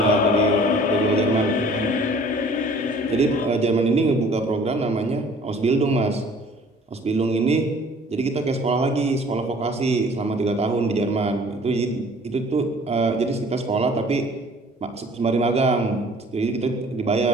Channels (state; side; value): normal; both; correlation 0.52